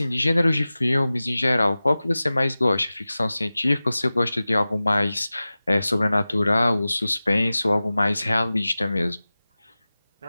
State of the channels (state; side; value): inverted; both; correlation -0.96